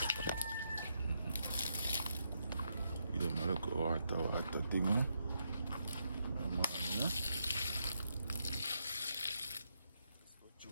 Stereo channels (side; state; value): both; inverted; correlation -0.80